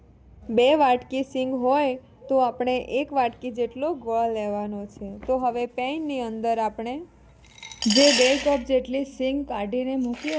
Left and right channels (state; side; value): identical; both; correlation 1.00